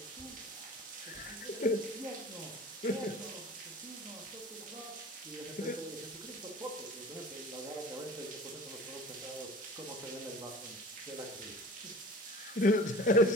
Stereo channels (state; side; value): normal; both; correlation 0.41